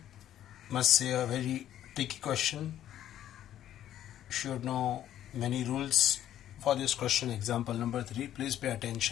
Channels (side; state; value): right; quieter; 11.6 dB